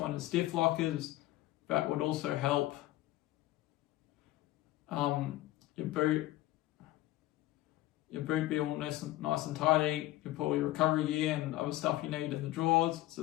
is stiff lockers. That would also help your boot be all nice and tidy. You put all your recovery gear and other stuff you need in the drawers.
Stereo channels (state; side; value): quieter; right; 16.4 dB